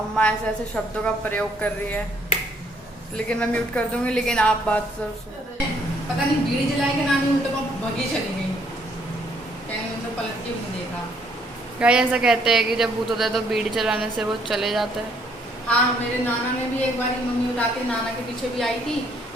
ऐसे ऐसे शब्दों का प्रयोग कर रही है, लेकिन मैं म्यूट कर दूंगी। लेकिन आप बात सर पता नहीं बीड़ी जलाई के नानी उल्टे पर भगी चली गई, कहीं उनको पलट के नहीं देखा। गाय ऐसा कहते हैं कि जब भूत होता है तो बीड़ी चलाने से वो चले जाता है। हाँ मेरे नाना ने भी एक बार मम्मी उठाते नाना के पीछे भी आई थी,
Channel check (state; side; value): normal; both; correlation 0.67